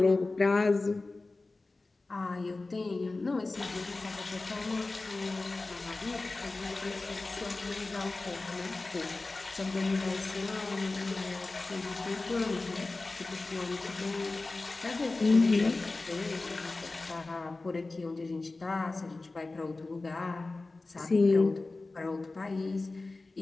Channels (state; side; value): quieter; right; 3.4 dB